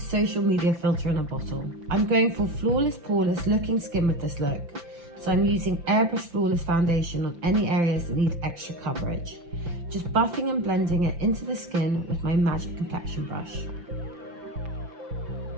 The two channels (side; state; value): left; late; 5.9 ms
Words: media filter in a bottle. I'm going for flawless, poreless looking skin with this look. So I'm using Airbrush Flawless Foundation on any areas that need extra coverage. Just buffing and blending it into the skin with my Magic Complexion brush.